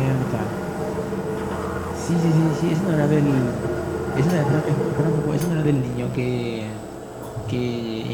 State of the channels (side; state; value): both; identical; correlation 1.00